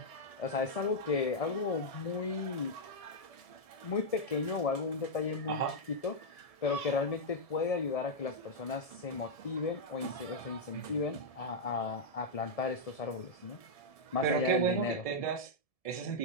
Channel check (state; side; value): late; right; 1.7 ms